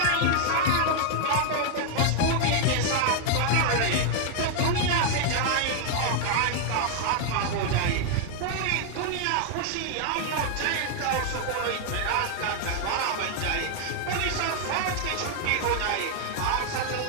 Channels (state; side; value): different; both; correlation 0.00